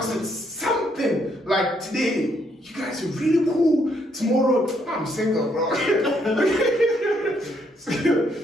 it's something like today, you guys are really cool. Tomorrow, I'm single, bro.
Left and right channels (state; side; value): normal; both; correlation 0.72